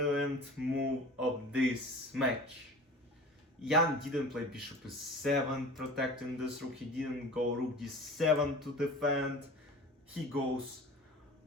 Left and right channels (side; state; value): both; normal; correlation 0.39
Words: move of this match. Jan didn't play bishop e7 protecting this rook, he didn't go rook d7 to defend, he goes